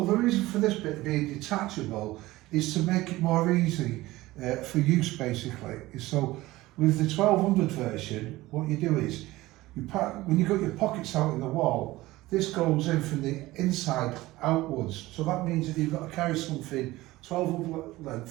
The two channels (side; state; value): left; quieter; 18.3 dB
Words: the reason for this bit being detachable is to make it more easy for use basically. So with the 1200 version, what you do is, when you've got your pockets out in the wall, this goes in from the inside outwards. So that means that you've got to carry something 1200